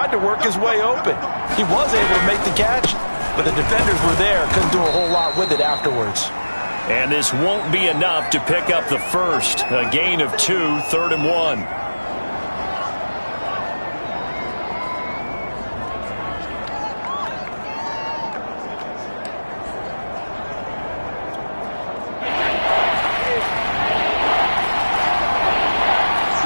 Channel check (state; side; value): inverted; both; correlation -1.00